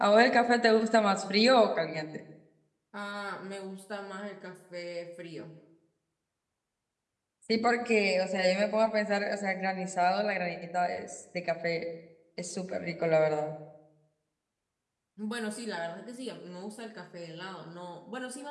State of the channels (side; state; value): both; identical; correlation 1.00